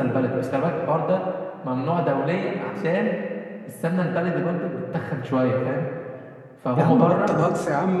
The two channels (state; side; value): identical; both; correlation 1.00